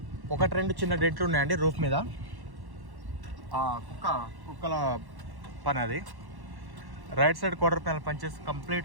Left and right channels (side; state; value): left; late; 1.1 ms